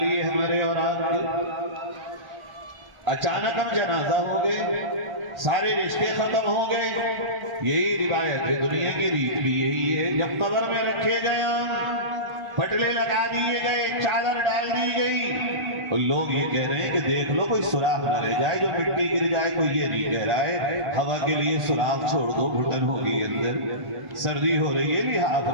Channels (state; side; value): late; left; 1.4 ms